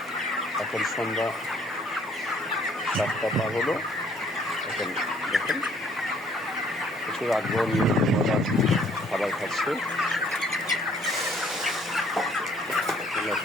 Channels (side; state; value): both; normal; correlation 0.61